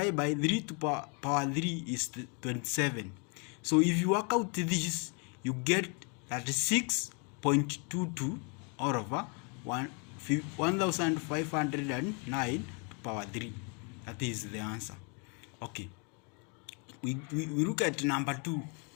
by 3 to power 3 is 27. So if you work out this, you get 36.22 all over 1509 to power 3. That is the answer. Okay, we look at number 2.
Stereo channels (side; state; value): right; quieter; 35.6 dB